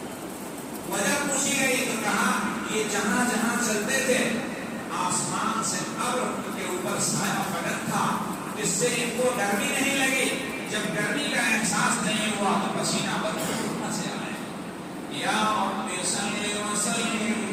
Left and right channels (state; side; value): identical; both; correlation 1.00